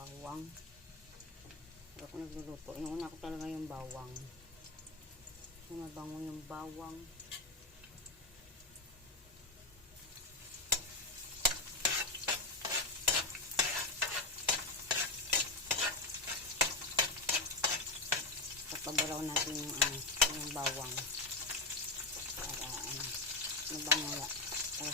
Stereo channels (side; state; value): right; quieter; 3.1 dB